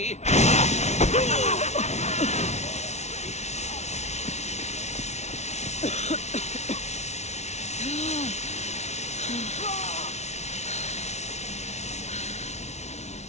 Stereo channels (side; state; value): right; late; 0.32 ms